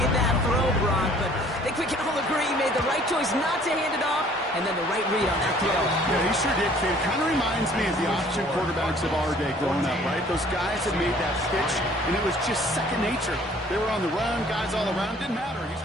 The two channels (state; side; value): normal; both; correlation 0.55